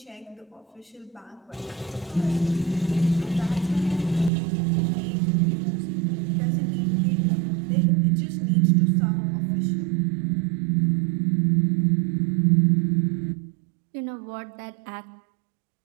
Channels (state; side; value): drops out; left; at 4.3 s